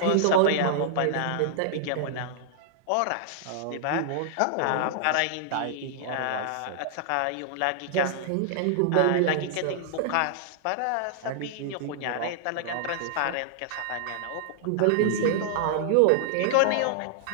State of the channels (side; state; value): both; different; correlation -0.01